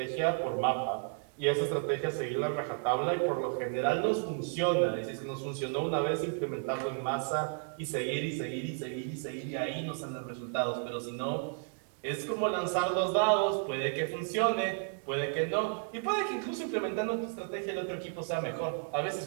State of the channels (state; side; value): silent; left; 56 dB below the other